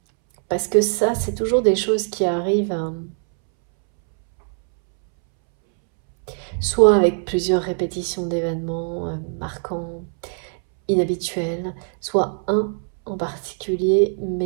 Parce que ça, c'est toujours des choses qui arrivent soit avec plusieurs répétitions d'événements marquants, inhabituels, soit un en particulier,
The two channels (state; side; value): silent; left; 64 dB below the other